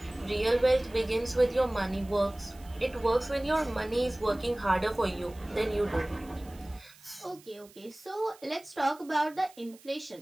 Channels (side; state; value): right; noise; hiss, 24 dB below the sound